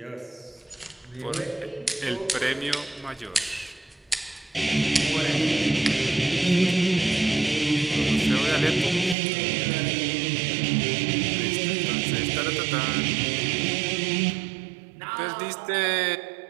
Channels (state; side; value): drops out; left; at 9.2 s